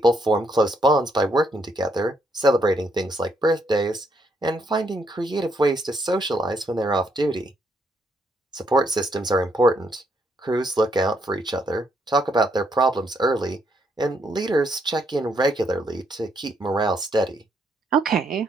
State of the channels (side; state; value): both; normal; correlation 0.74